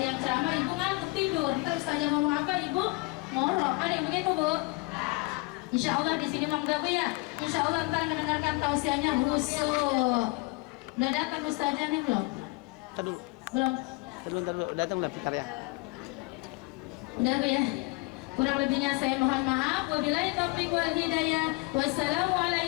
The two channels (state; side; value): quieter; right; 25.5 dB